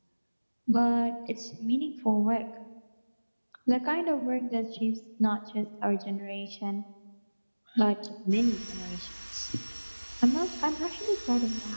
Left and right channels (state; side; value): inverted; both; correlation -1.00